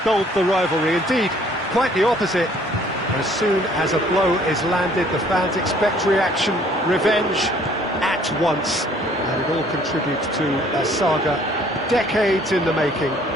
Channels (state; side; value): normal; both; correlation 0.59